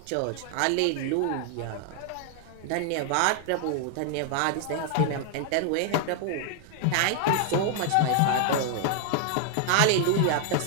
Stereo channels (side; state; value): both; different; correlation 0.00